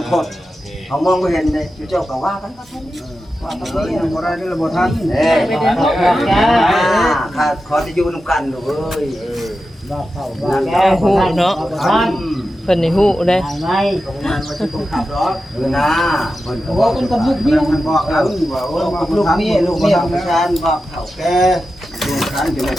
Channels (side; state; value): both; normal; correlation 0.91